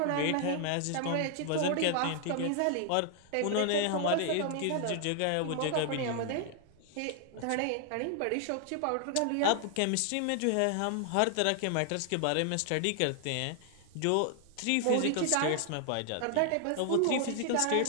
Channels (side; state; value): both; different; correlation 0.00